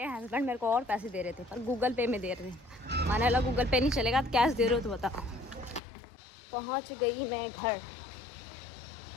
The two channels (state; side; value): drops out; right; at 5.8 s